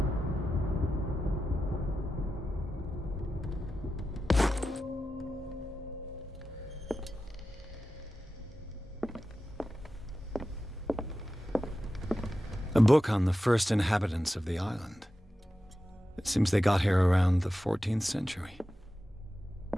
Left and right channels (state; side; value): normal; both; correlation 0.92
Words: A book on the first inhabitants of the island. It seems they got here around the 14th century.